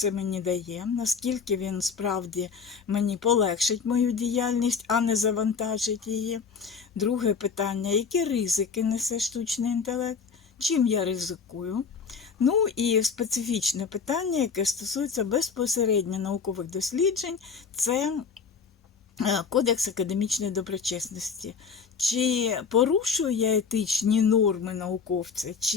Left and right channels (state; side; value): quieter; right; 5.7 dB